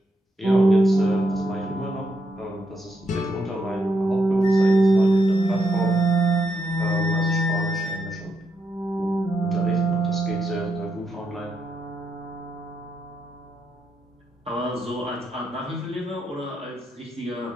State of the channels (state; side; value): normal; both; correlation 0.80